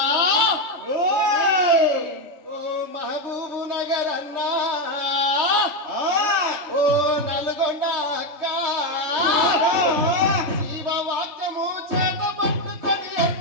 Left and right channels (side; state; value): left; late; 3.1 ms